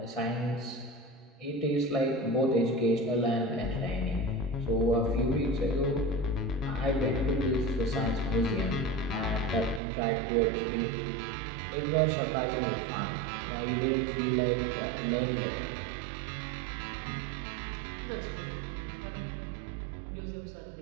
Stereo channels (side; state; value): left; drops out; at 9.8 s